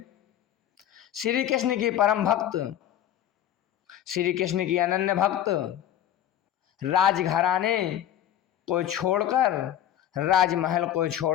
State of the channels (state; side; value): quieter; right; 11.3 dB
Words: श्री कृष्ण की परम भक्त, श्री कृष्ण की अनन्य भक्त, राजघराने को छोड़कर, राजमहल को